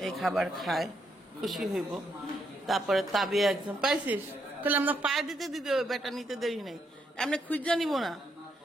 এই খাবার খায় খুশি হইব। তারপরে তাবিয়া একদম পাইছিস তাহলে আমরা পায়ে দিতে দিতে বেটা নিতে দেরি নেই, এমনি খুঁজা নিব না,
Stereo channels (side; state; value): both; normal; correlation 0.77